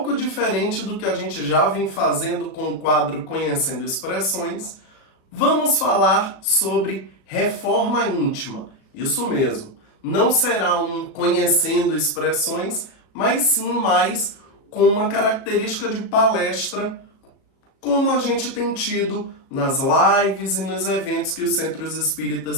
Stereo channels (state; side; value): late; right; 37 ms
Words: diferente do que a gente já vem fazendo com o quadro Conhecendo Expressões, vamos falar sobre reforma íntima. Isso mesmo, não será um Conhecendo Expressões, mas sim mais com uma característica de palestra, como a gente tem tido nas lives e nos eventos que os centros